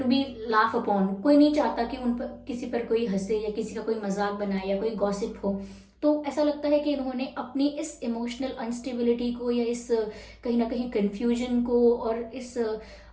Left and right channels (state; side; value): identical; both; correlation 1.00